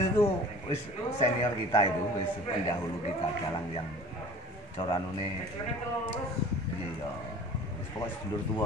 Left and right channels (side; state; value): both; normal; correlation 0.44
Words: tuh wis senior kita itu, wis pendahulu kita dalang yang coranune iya. Wis pokoknya sedulur tua